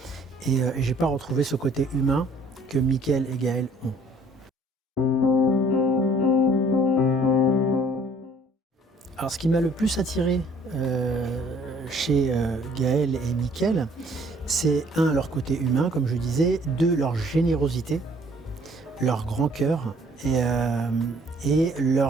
et je n'ai pas retrouvé ce côté humain que Mickaël et Gaël ont. Alors ce qui m'a le plus attiré chez Gaël et Mickaël, c'est leur côté humain, comme je disais, leur générosité, leur grand cœur et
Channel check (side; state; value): both; normal; correlation 0.58